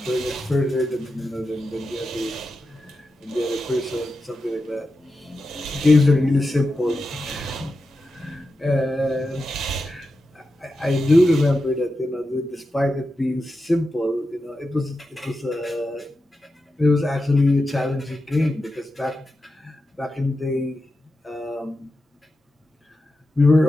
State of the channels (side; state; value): both; normal; correlation 0.90